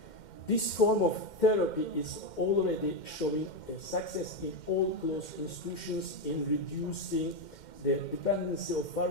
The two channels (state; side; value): late; right; 2.1 ms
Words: This form of therapy is already showing a success in all closed institutions in reducing the dependency of